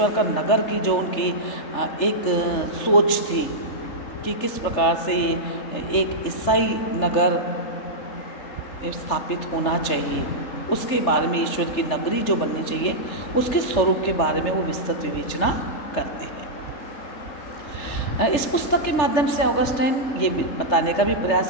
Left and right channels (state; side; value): late; right; 3.4 ms